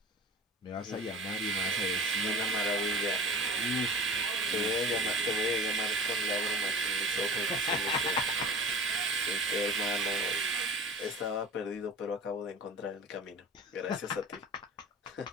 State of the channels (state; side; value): normal; both; correlation 0.36